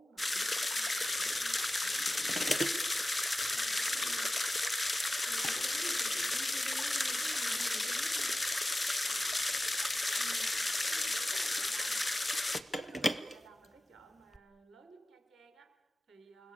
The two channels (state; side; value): normal; both; correlation 0.95